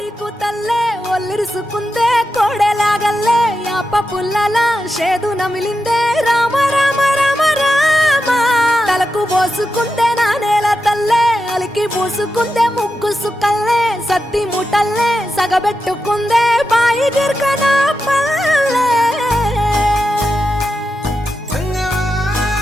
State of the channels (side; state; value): both; normal; correlation 0.89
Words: కూతల్లే ఒల్లిరుసుకుందే కోడెలాగల్లే యాప పుల్లల షేదు నమిలిందే రామ రామ రామ రామ తలకు పోసుకుందే నా నేల తల్లే అలికి పూసుకుందే ముగ్గు సుక్కల్లే సద్ది ముటల్లే సగబెట్టుకుందే బాయి గిర్కన పల్లె